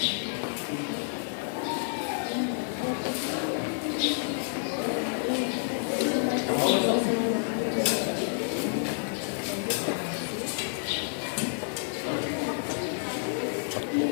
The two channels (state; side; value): silent; right; 56 dB below the other